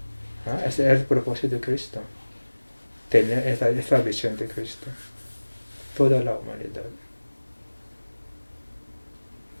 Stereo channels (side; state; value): both; inverted; correlation -1.00